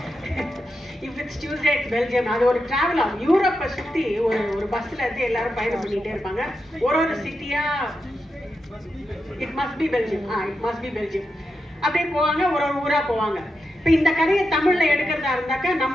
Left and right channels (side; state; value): both; normal; correlation 0.87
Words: if it's Tuesday it's Belgium. அது ஒரு டிராவல் ஆகும். யூரோப்பை சுற்றி ஒரு பஸ்ஸில் இருந்து எல்லாரும் பயணம் பண்ணிகிட்டே இருப்பாங்க. ஒரு சிட்டியாக it must be Belgium, it must be Belgium அப்படியே போவாங்க. ஒரு ஊராக போவாங்க. இப்போ இந்த கதையை தமிழில் எடுக்கிறதா இருந்தாக்கா